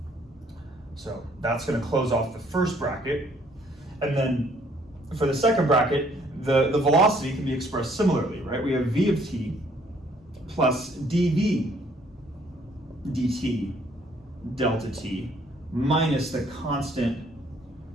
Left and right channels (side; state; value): both; normal; correlation 0.63